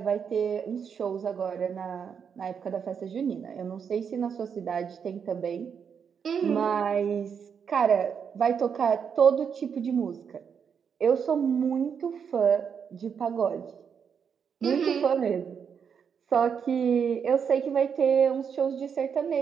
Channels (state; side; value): quieter; left; 7.0 dB